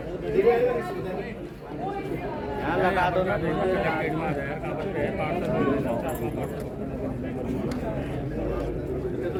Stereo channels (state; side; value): identical; both; correlation 1.00